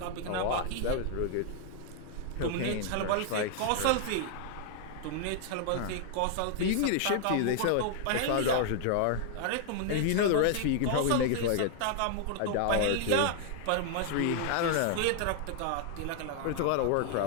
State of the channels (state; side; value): different; both; correlation 0.00